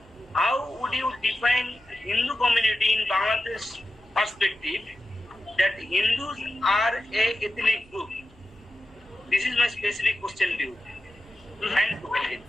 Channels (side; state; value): left; noise; hum, 29 dB below the sound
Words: How would you define Hindu community in Bangladesh perspective that Hindus are a ethnic group? This is my specific question to you. Thank you.